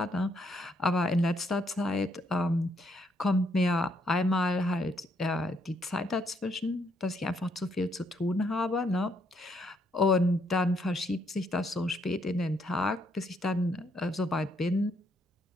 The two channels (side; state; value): both; normal; correlation 0.72